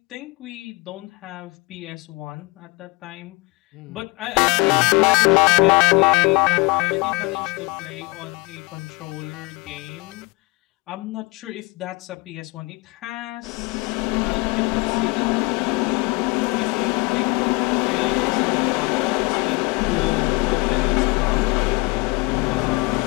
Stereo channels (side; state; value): right; quieter; 26.0 dB